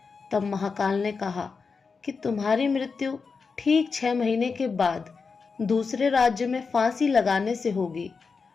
तब महाकाल ने कहा कि तुम्हारी मृत्यु ठीक 6 महीने के बाद दूसरे राज्य में फांसी लगाने से होगी।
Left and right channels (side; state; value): right; quieter; 5.0 dB